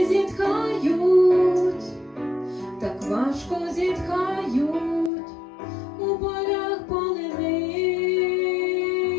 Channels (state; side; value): drops out; right; at 5.1 s